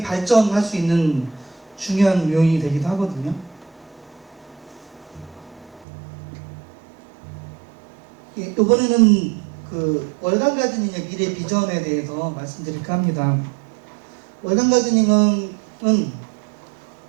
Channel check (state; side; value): drops out; left; at 5.9 s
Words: 발전할 수 있는 중요한 요인이 되기도 하거든요. 예, 이번에는 그 월간 가드닝의 미래 비전에 대해서 말씀드릴까 합니다. 월간 가드닝은